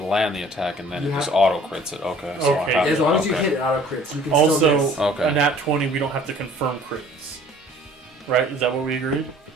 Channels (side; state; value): both; normal; correlation 0.52